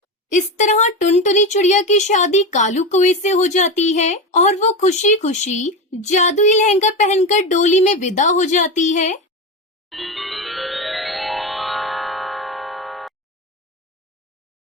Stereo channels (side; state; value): both; normal; correlation 0.19